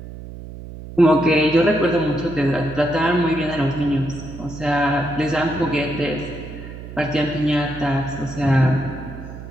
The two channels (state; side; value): noise; right; hum, 13 dB below the sound